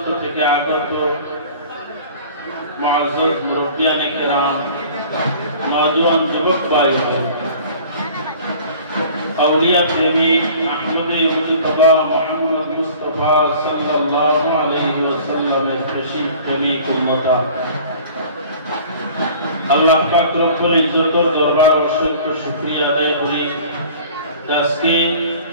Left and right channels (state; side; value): inverted; both; correlation -0.46